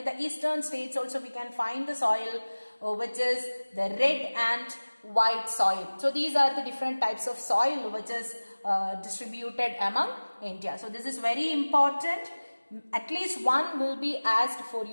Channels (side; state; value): both; inverted; correlation -1.00